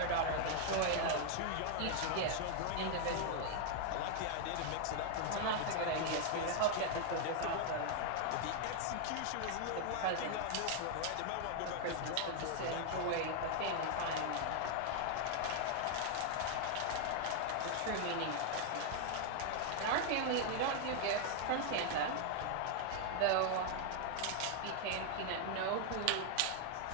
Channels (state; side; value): different; both; correlation 0.00